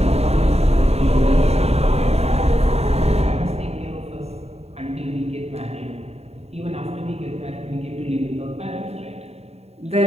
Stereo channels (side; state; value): left; late; 0.30 ms